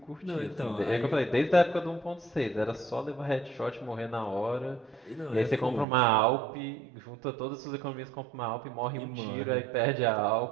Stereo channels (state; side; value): drops out; left; at 5.9 s